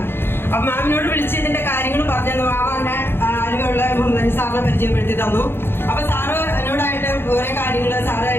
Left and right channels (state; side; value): late; right; 0.11 ms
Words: അപ്പൊ മാമിനോട് വിളിച്ച് ഇതിന്റെ കാര്യങ്ങൾ പറഞ്ഞു. മാമാന്റെ അറിവുള്ള സാറിനെ പരിചയപ്പെടുത്തി തന്നു. അപ്പൊ സാറ് എന്നോടായിട്ട് ഓരോ കാര്യങ്ങള് സാറ്